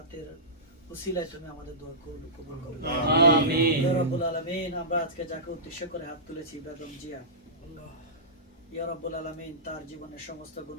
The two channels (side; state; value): both; normal; correlation -0.18